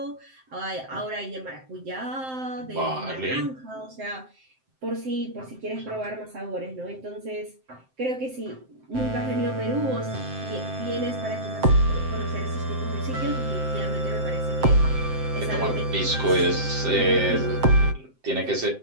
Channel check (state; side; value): late; left; 7.7 ms